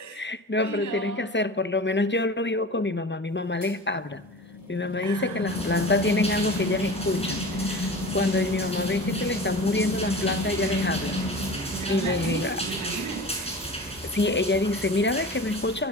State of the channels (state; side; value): normal; both; correlation 0.35